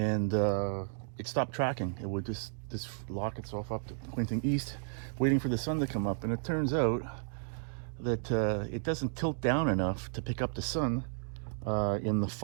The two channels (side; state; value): left; silent; digital silence